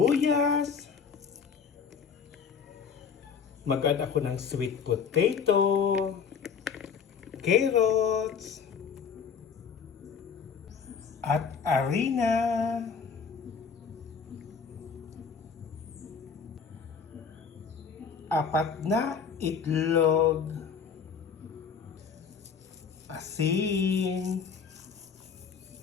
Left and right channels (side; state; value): right; quieter; 6.3 dB